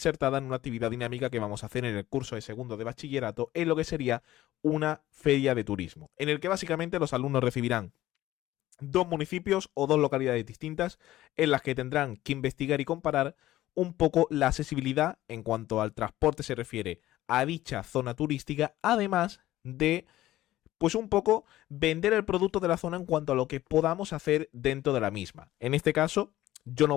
en una actividad dinámica que vamos a hacer en el curso de segundo de bachillerato en lo que sería una feria de turismo, en el que básicamente los alumnos recibirán dos municipios o dos localidades distintas en las que tendrán que investigar y comparar un poco la accesibilidad en cuanto al transporte se refiere a dicha zona turística, además de pues un poco vender el producto de la zona en cuanto a lo que podamos hacer dentro de la misma. En este caso, yo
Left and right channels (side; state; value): right; quieter; 15.0 dB